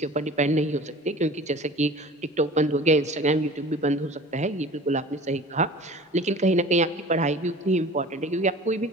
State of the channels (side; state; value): both; normal; correlation 0.41